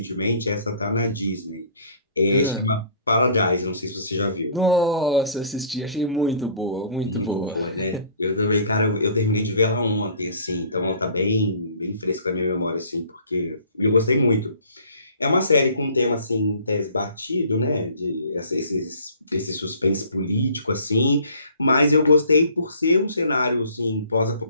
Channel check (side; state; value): both; inverted; correlation -0.52